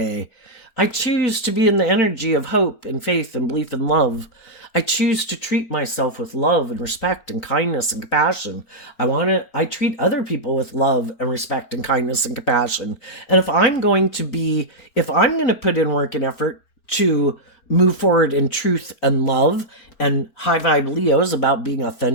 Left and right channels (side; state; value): right; late; 4.4 ms